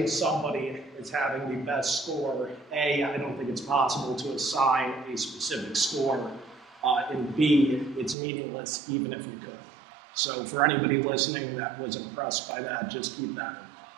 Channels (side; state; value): left; drops out; at 8.2 s